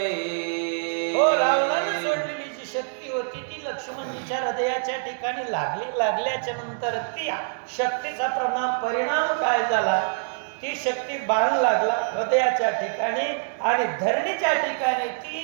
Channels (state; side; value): silent; left; digital silence